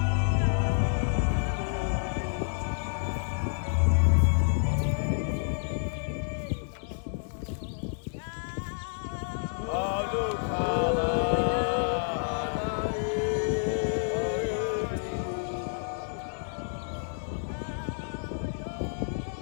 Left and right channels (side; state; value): right; silent; 58 dB below the other